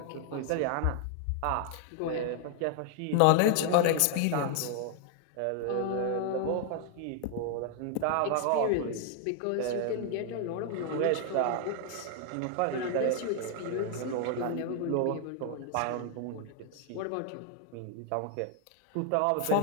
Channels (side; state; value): both; different; correlation 0.00